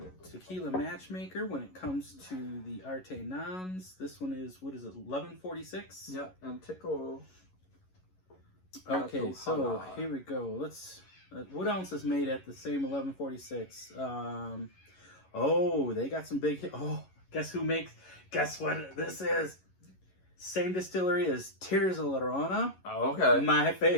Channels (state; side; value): late; right; 11 ms